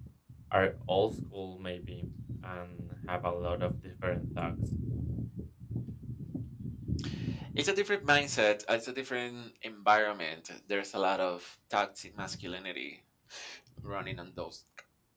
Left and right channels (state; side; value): identical; both; correlation 1.00